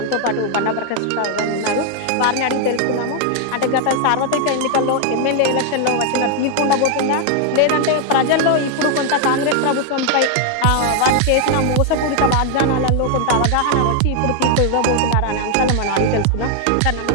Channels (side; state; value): both; different; correlation 0.00